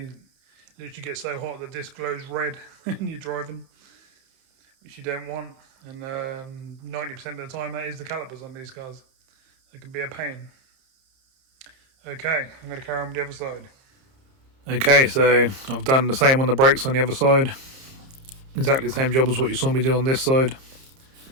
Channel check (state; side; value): late; left; 30 ms